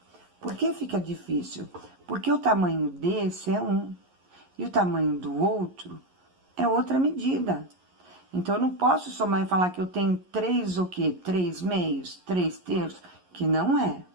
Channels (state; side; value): late; left; 11 ms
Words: Por que fica difícil? Porque o tamanho desse é 1 e o tamanho do outro é outra medida. Então, eu não posso somar e falar que eu tenho 3 o quê? 3/2, 3/3, que não é.